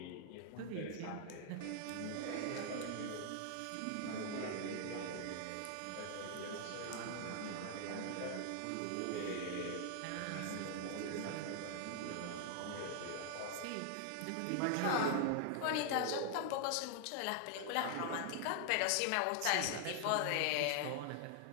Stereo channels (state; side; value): different; both; correlation 0.00